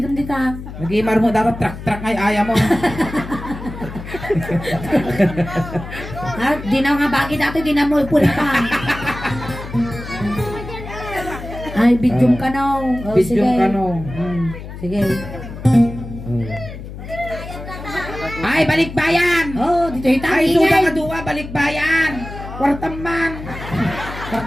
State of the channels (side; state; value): left; noise; hum, 11 dB below the sound